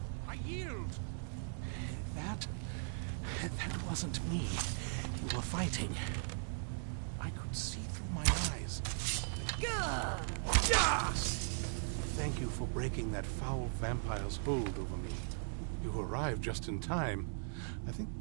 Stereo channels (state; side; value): silent; left; digital silence